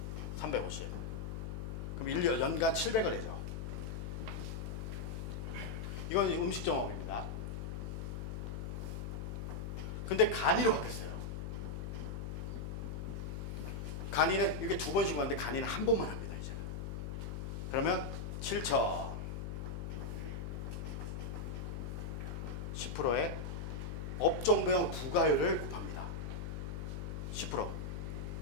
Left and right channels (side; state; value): left; noise; hum, 4 dB below the sound